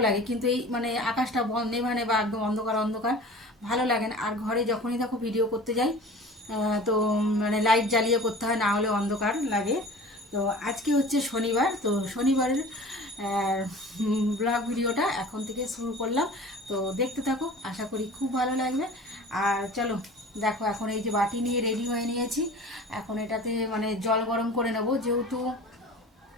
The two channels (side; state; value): both; normal; correlation 0.41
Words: লাগে। কিন্তু এই মানে আকাশটা নেভানে বা একদম অন্ধকার অন্ধকার ভালো লাগে না। আর ঘরে যখনই দেখো ভিডিও করতে যাই তো মানে লাইট জ্বালিয়ে করতে হয়, না হলে অন্ধকার লাগে। তো আজকে হচ্ছে শনিবার, তো শনিবারের ব্লগ ভিডিওটা এখন থেকে শুরু করলাম। তো দেখতে থাকো, আশা করি খুব ভালো লাগবে। আর চলো দেখো, এখন এই যে বাটি নিয়ে রেডি হয়ে নিয়েছি। এখন এটাতে মানে জল গরম করে নেব, যেহেতু